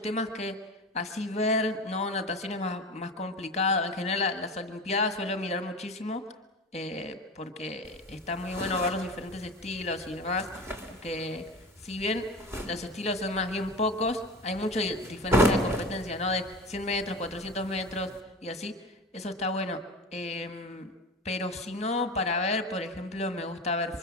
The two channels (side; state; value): both; normal; correlation 0.30